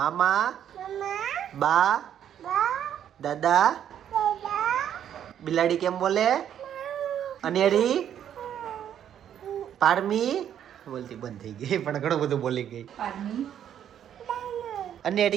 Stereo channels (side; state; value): left; quieter; 9.8 dB